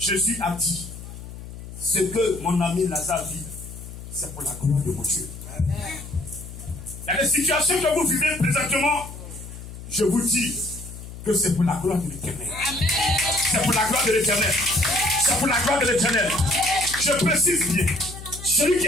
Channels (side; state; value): left; noise; hum, 13 dB below the sound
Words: a dit, ce que mon ami Lazare vit, c'est pour la gloire de mon Dieu. Il y a des situations que vous vivez présentement, je vous dis que c'est pour la gloire de l'Éternel. C'est pour la gloire de l'Éternel. C'est pour la gloire de l'Éternel. Je précise bien, celui qui